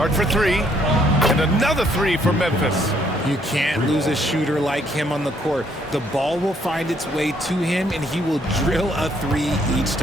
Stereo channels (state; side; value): normal; both; correlation 0.68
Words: for 3. And another 3 for Memphis. You can't lose a shooter like him on the court. The ball will find its way to him, and he will drill a 3 each